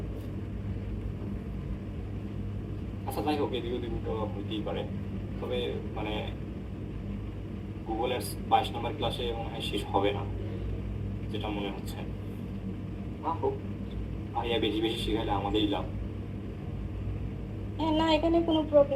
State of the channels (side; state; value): both; identical; correlation 1.00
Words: আচ্ছা যাই হোক, এদিক ওদিক তো হইতেই পারে, তবে মানে গুগল অ্যাডস 22 নম্বর ক্লাসে মনে হয় শেষ হবে না, যেটা মনে হচ্ছে। ভাইয়া বেশি বেশি শিখাইলে আমাদেরই লাভ। হ্যাঁ না, এখানে কোনো